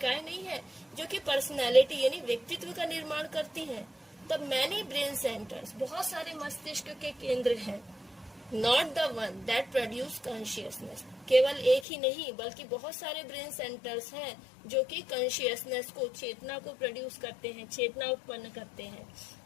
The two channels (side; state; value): right; drops out; at 11.9 s